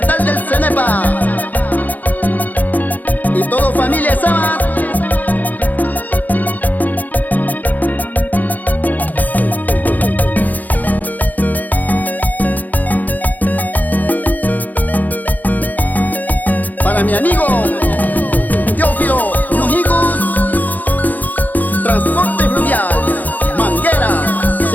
del Cenepa y todo familia Sama. Para mi amigo Teófilo Nujicus, Transporte Fluvial, Manguera,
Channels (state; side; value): late; right; 0.082 ms